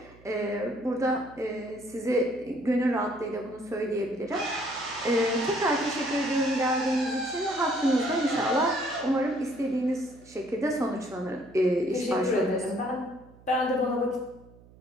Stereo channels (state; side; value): noise; right; hum, 24 dB below the sound